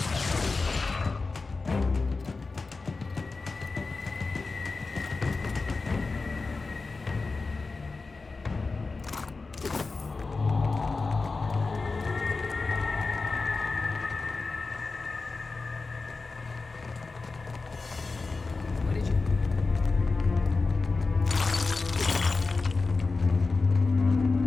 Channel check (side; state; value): right; quieter; 3.9 dB